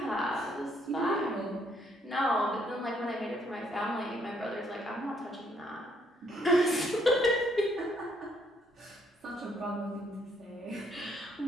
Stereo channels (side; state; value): both; normal; correlation 0.69